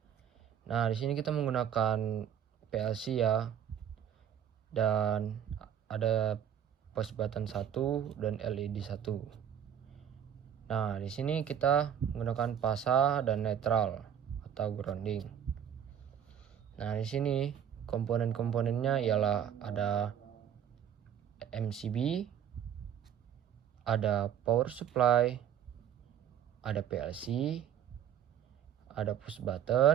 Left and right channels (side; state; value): left; quieter; 9.3 dB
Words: Nah, di sini kita menggunakan PLC ya. Dan ada push button 1 dan LED 1. Nah, di sini kita menggunakan fasa dan netral atau grounding. Nah, di sini komponen-komponennya ialah ada MCB, ada power supply, ada PLC, ada push